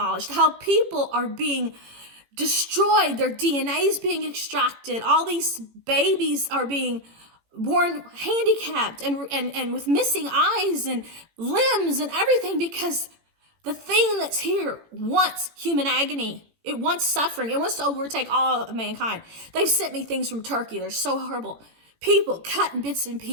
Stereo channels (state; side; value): late; left; 18 ms